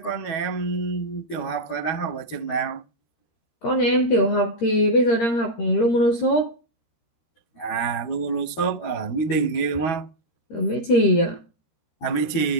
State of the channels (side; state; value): right; late; 12 ms